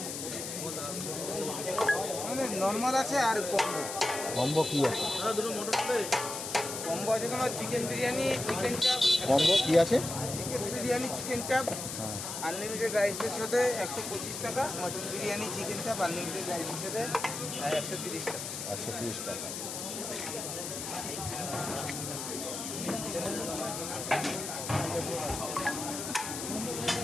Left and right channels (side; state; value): left; noise; hiss, 6 dB below the sound